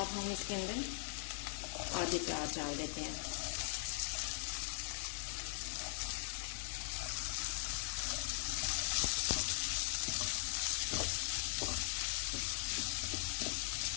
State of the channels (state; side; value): silent; right; digital silence